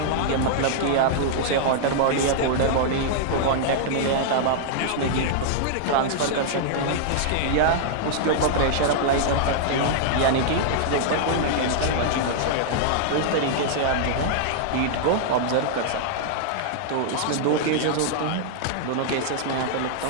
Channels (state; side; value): different; both; correlation -0.01